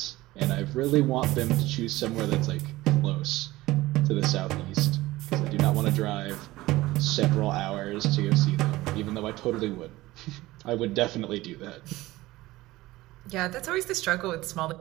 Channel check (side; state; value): left; quieter; 18.2 dB